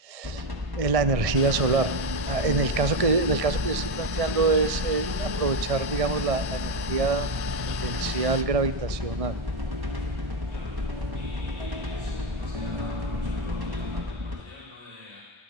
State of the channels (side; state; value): left; late; 1.6 ms